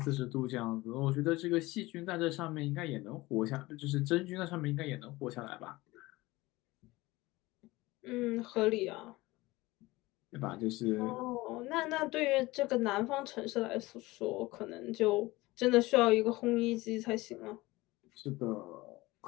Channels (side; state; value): right; quieter; 20.2 dB